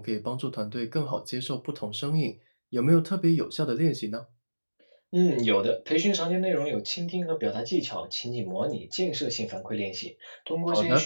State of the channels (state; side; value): inverted; both; correlation -1.00